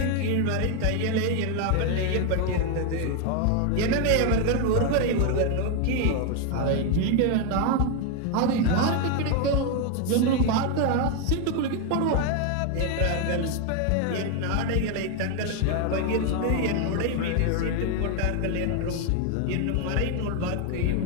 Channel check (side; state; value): both; different; correlation 0.01